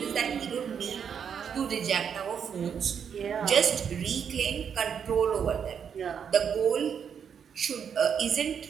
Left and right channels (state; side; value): quieter; left; 7.5 dB